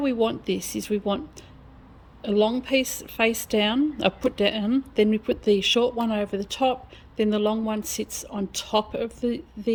want this is we want a long piece face down, put down, then we put the short one over the top, then the long one sits on top of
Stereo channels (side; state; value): both; identical; correlation 1.00